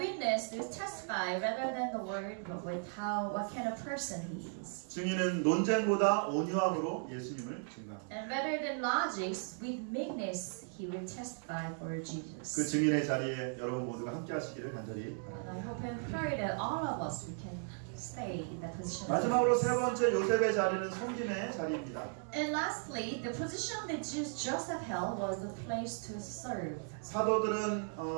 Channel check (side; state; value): left; silent; 53 dB below the other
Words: is testify rather than the word, but with what kind of person he is. 증인은 논쟁보다 온유함으로 예수님을 증거합니다. And rather than logics, with meekness he will testify for Jesus. 그 증인의 자리에 여러분 모두가 함께 하시기를 간절히 바랍니다. And I hope and pray that all of us we can stay in that position. 마지막으로 세 번째 요셉의 자리는 섬김의 자리입니다. And lastly, the position that Joseph held was the place to serve.